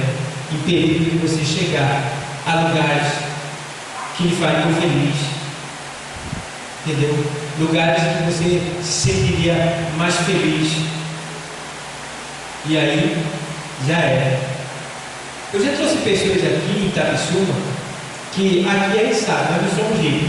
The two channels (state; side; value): identical; both; correlation 1.00